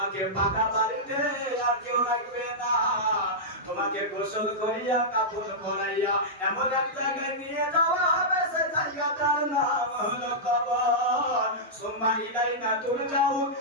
পাকা বাড়িতে আর কেউ রাখবে না। তোমাকে গোসল করিয়া কাপড় পরাইয়া এমন এক জায়গায় নিয়ে যাওয়া হবে, সেই জায়গাটার নাম হলো কবর। সুম্মা ইলাইনা তুরজাউন,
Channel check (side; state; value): both; normal; correlation -0.11